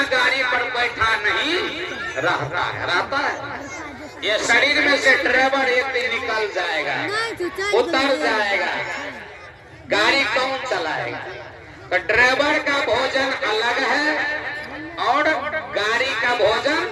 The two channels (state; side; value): identical; both; correlation 1.00